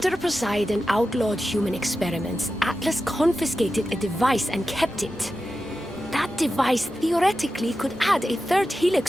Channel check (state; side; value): normal; both; correlation 0.92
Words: Poseidon outlawed human experiments, Atlas confiscated a device and kept it. That device theoretically could add a third